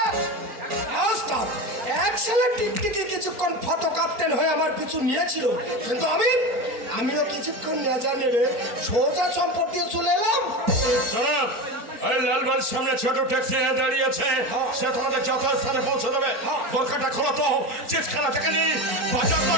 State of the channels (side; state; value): left; late; 4.4 ms